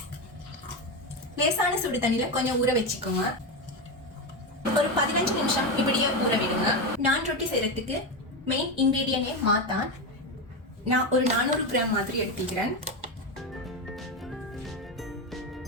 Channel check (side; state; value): both; normal; correlation 0.14